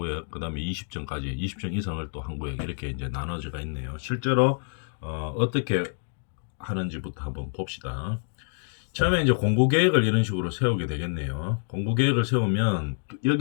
그 다음에 20층까지 20층 이상을 또 한 구획 이렇게 이제 나눠져가 있네요. 실제로 어떻게 하는지부터 한번 봅시다. 처음에 이제 공구 계획을 이런 식으로 세우게 되겠네요. 공구 계획을 세우면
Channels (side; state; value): right; silent; digital silence